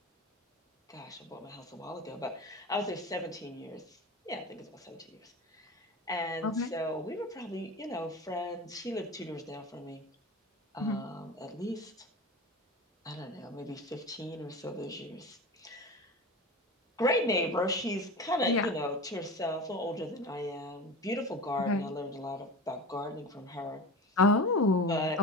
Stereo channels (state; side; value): normal; both; correlation 0.30